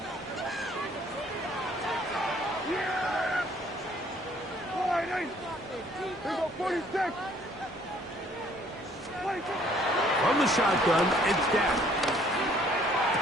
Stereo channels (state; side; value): normal; both; correlation 0.60